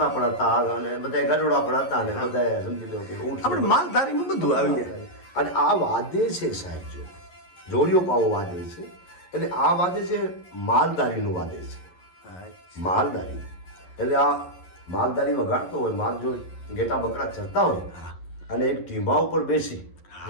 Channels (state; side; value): late; right; 11 ms